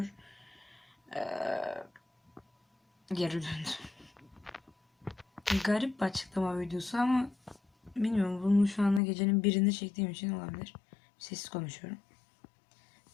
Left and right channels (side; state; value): right; drops out; at 9.0 s